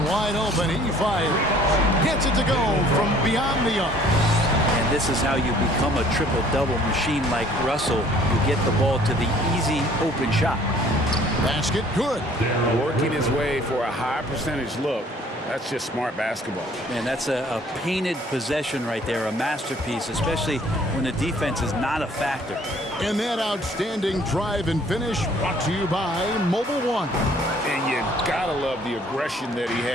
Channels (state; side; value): normal; both; correlation 0.56